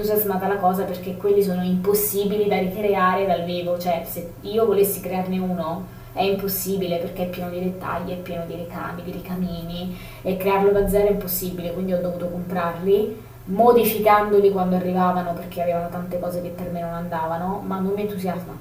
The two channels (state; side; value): identical; both; correlation 1.00